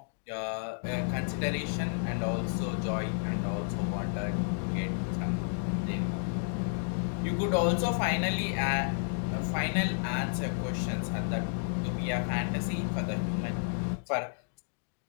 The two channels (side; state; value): right; silent; digital silence